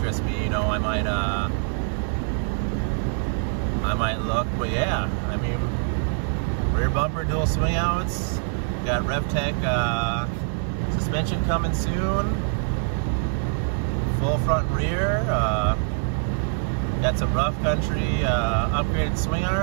me, you know, I might look. But yeah, I mean, rear bumper, dual swing outs, got RevTech suspension coming soon, full front and rear, got some rough country upgraded swing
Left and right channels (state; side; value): silent; left; digital silence